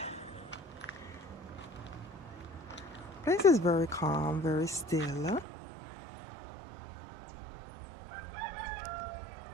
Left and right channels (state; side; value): drops out; left; at 5.5 s